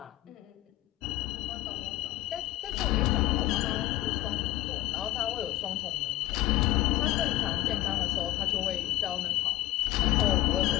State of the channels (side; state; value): right; quieter; 15.6 dB